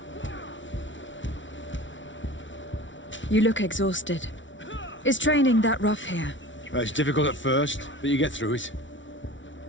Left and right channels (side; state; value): right; late; 0.55 ms